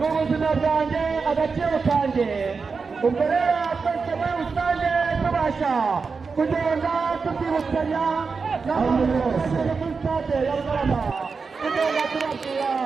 bwanjye agaciro kanjye ubwo rero twese muri rusange tubasha kugenda tubyibutsanya n'abantu bose muri stade ya Rugarama tugenda tubabwira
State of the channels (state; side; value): quieter; left; 4.9 dB